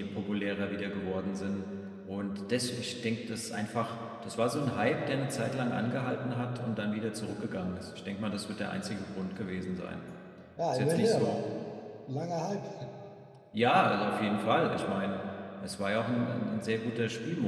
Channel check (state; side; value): identical; both; correlation 1.00